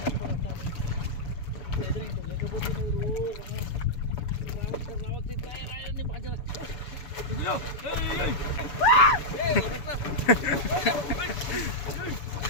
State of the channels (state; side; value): late; right; 7.1 ms